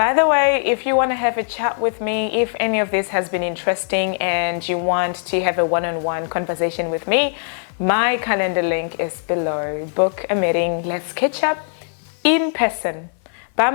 the way, if you want to have a chat with me, if any of this has been interesting and you want to have a one-on-one conversation with me, my calendar link is below. Book a meeting. Let's catch up in person. Bye,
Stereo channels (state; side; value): silent; right; 60 dB below the other